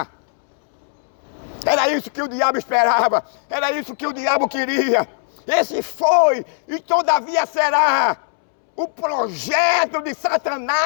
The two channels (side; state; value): right; silent; 66 dB below the other